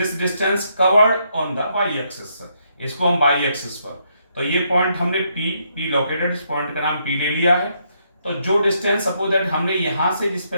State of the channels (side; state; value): both; inverted; correlation -0.76